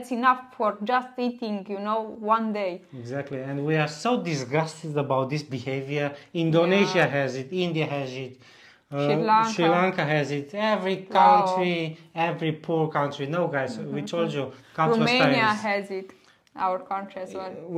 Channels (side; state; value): both; identical; correlation 1.00